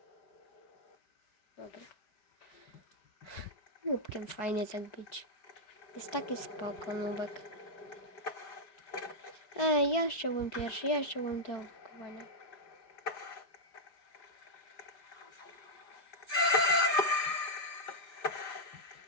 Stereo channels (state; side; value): late; right; 4.6 ms